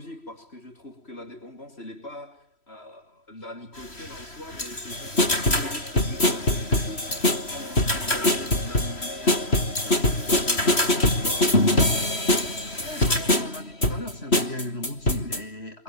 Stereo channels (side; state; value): right; late; 3.1 ms